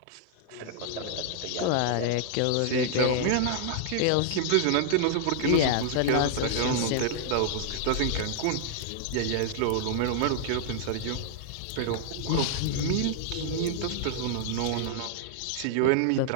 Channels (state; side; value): different; both; correlation -0.01